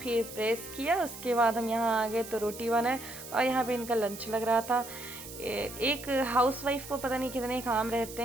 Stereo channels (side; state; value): right; noise; hiss, 13 dB below the sound